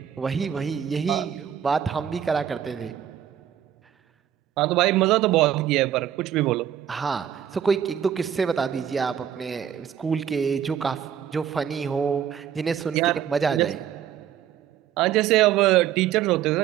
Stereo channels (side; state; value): left; quieter; 9.6 dB